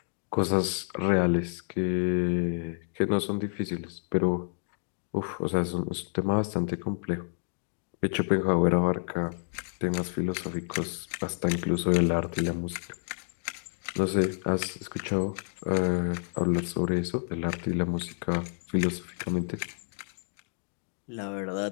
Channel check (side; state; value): right; silent; digital silence